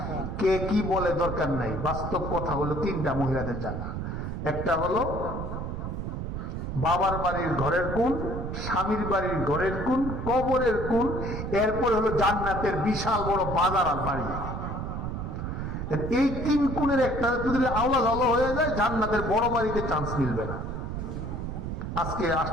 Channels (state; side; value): noise; right; rumble, 4 dB below the sound